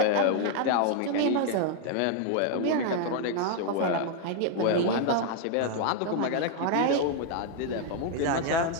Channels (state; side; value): different; both; correlation 0.00